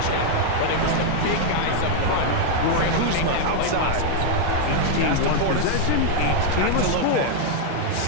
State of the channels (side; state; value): both; different; correlation 0.00